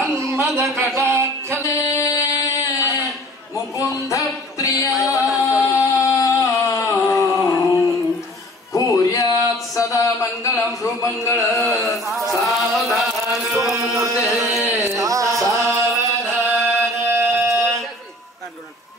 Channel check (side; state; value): both; normal; correlation 0.48